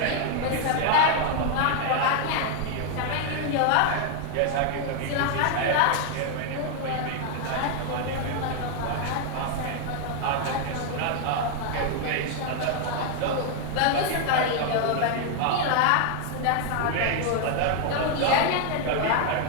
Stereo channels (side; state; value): both; different; correlation 0.00